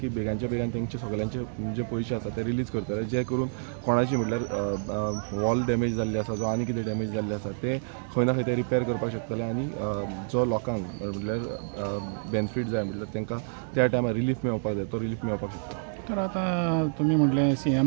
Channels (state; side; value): silent; left; digital silence